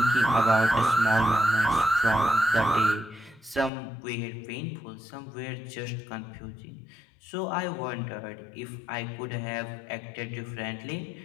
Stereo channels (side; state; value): right; drops out; at 3.7 s